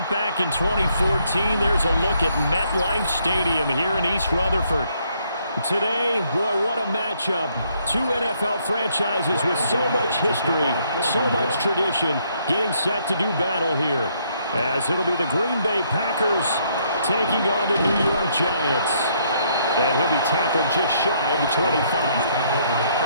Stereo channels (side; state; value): both; inverted; correlation -0.70